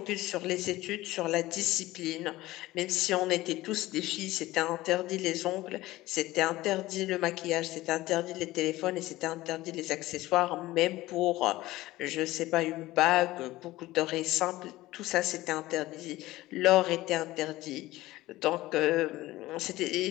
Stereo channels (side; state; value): right; quieter; 17.6 dB